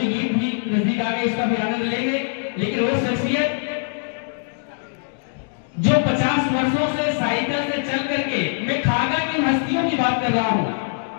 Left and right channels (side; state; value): right; silent; digital silence